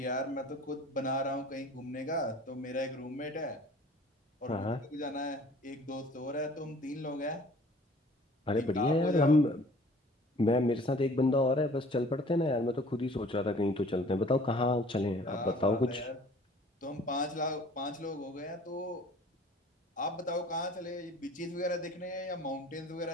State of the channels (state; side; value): normal; both; correlation 0.50